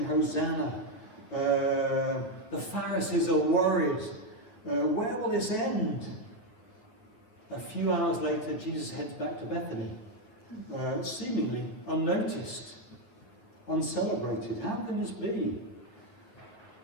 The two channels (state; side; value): late; right; 9.5 ms